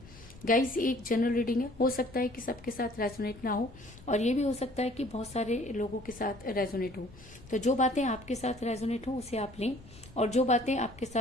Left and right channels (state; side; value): noise; left; rumble, 20 dB below the sound